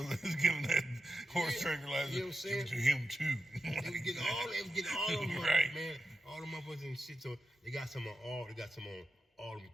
that was giving that horse tranquilizer. You know what I'm saying? To him too. They was getting all them motherfuckers, Right. man. All them motherfuckers and shit. So they got some on all them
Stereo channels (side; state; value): both; normal; correlation 0.89